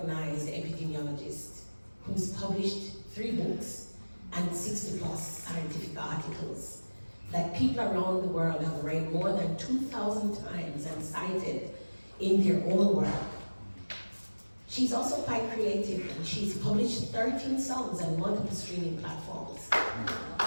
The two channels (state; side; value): inverted; both; correlation -1.00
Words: epidemiologist who's published 3 books and 60 plus scientific articles that people around the world have read more than 2,000 times and cited in their own work. She's also quite creative, and she's published 13 songs and multiple streaming platforms.